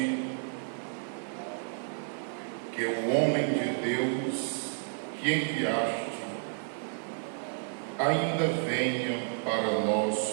que o homem de Deus que enviaste ainda venha para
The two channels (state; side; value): silent; left; 57 dB below the other